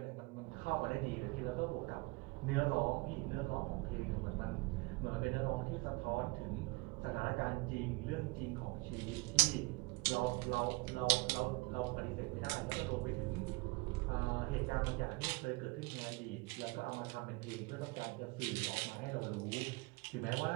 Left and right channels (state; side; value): quieter; left; 25.2 dB